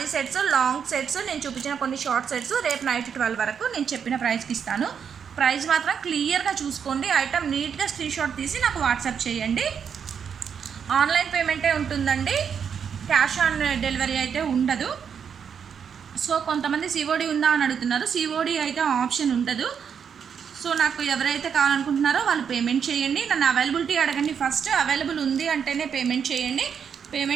సెట్స్, లాంగ్ సెట్స్, నేను చూపించిన కొన్ని షార్ట్ సెట్స్ రేపు నైట్ 12 వరకు నేను చెప్పిన ప్రైస్కి ఇస్తాను. ప్రైస్ మాత్రం క్లియర్గా చూసుకోండి. ఐటమ్ నీట్గా స్క్రీన్ షాట్ తీసి నాకు వాట్సాప్ చేయండి. ఆన్లైన్ పేమెంటే ఉంటుందండి, క్యాష్ ఆన్ డెలివరీ అయితే ఉండదు. సో కొంతమంది సిఓడి ఉందా అని అడుగుతున్నారు. సిఓడి అయితే ఆప్షన్ ఉండదు. సో నాకు ఎవరైతే కావాలనుకుంటున్నారో వాళ్ళు పేమెంట్ చేయండి. నన్ను అవైలబిలిటీ అడగండి. ఫస్ట్ అవైలబుల్ ఉంది అంటేనే పేమెంట్ చేయండి.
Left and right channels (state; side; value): quieter; left; 7.3 dB